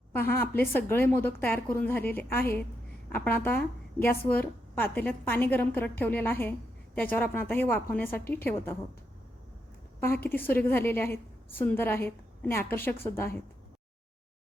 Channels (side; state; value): both; normal; correlation 0.81